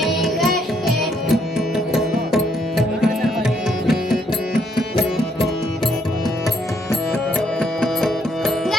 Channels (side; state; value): both; normal; correlation 0.71